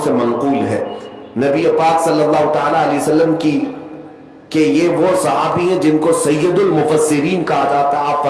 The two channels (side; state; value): both; identical; correlation 1.00